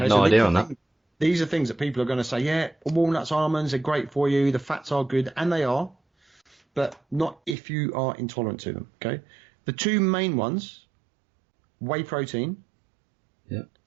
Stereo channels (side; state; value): left; drops out; at 7.6 s